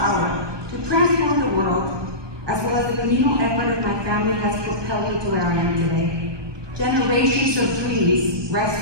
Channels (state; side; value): late; left; 1.2 ms